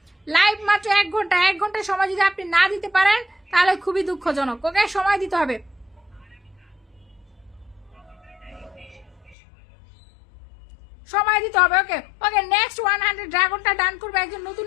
লাইভ মাত্র 1 ঘন্টা, 1 ঘন্টা সময় যদি আপনি না দিতে পারেন তাহলে খুবই দুঃখজনক। ওকে সময় দিতে হবে, সময় দিতে হবে। ওকে ওকে নেক্সট 100 ড্রাগনটা ডান করবে একজন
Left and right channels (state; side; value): drops out; right; at 9.3 s